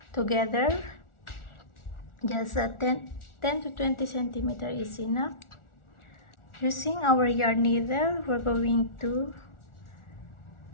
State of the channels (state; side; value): late; right; 1.4 ms